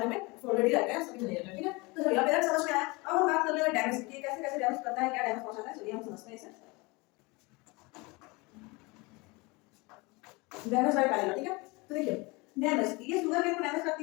में फोल्डेड ही रहते हैं, सभी नहीं रहते हैं, ठीक है। तो चलिए अब पेयर समझ में आया। अब हम बात कर लेंगे डैमेज की, कैसे कैसे डैमेज करता है, क्या डैमेज पहुंचाता है। चलिए हम समझते हैं इसे। डैमेज बाय पैरेलल, ठीक है। तो देखिए डैमेज, ये शुगर केन को डैमेज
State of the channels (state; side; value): quieter; right; 25.6 dB